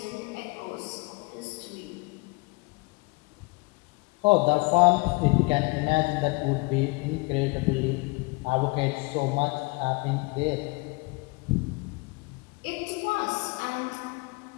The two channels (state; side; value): quieter; right; 26.2 dB